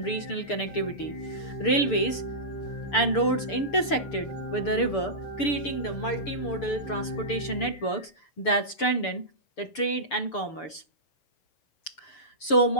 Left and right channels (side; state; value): right; late; 6.8 ms